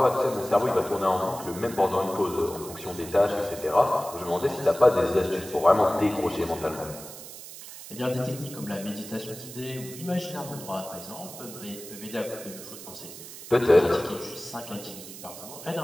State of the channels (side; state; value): right; noise; hiss, 13 dB below the sound